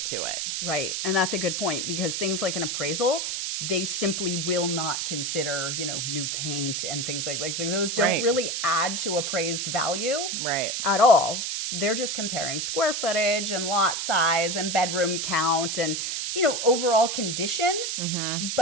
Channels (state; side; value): noise; right; hiss, 2 dB below the sound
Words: to it. Right. And that's a good point, because things like an appraisal, they simply will not consider, new paint and things like those don't really add to appraised value at all. They're just comparing square footage and lot size and bedroom count and, overall condition.